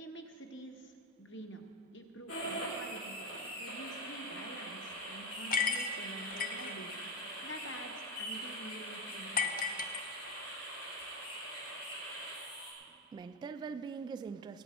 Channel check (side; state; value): both; normal; correlation 0.15